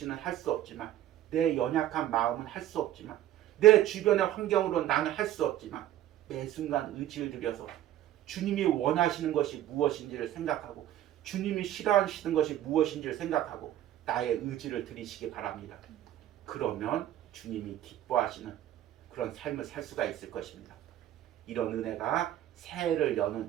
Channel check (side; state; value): left; quieter; 12.7 dB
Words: 할 수 없지만 내 연약한 마음은 할 수 없지만 내 주변의 환경으로 나는 할 수 없지만 매 순간 의지를 들여서 주님이 원하시는 것이 무엇인지를 생각하고 주님이 싫어하시는 것이 무엇인지를 생각하고 나의 의지를 드리시기 바랍니다. 그러면 주님이 기뻐하시는 그런 삶을 살 수가 있을 것입니다. 이런 은혜가 새해를